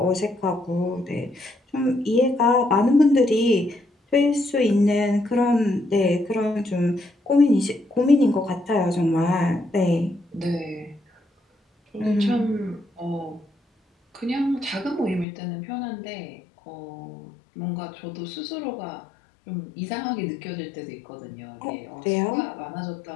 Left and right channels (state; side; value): drops out; right; at 15.2 s